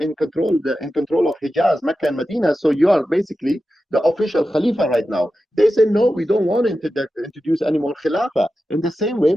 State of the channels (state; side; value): normal; both; correlation 0.92